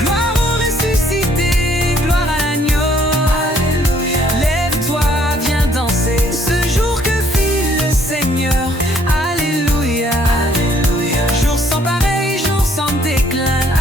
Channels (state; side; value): normal; both; correlation 0.64